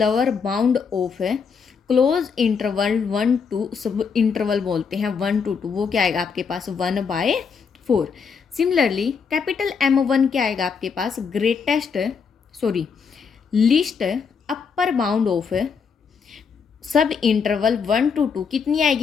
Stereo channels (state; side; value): quieter; right; 5.9 dB